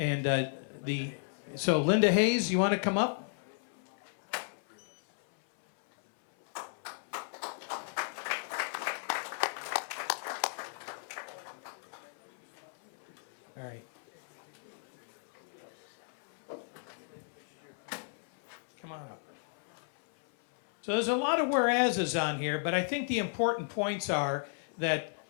so Linda Hayes, you want to come up? All right. Come on up. So there's a lot of whereases on here, but I think the important points are that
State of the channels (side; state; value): right; silent; 55 dB below the other